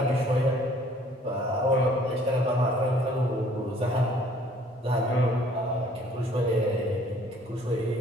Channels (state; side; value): normal; both; correlation 0.57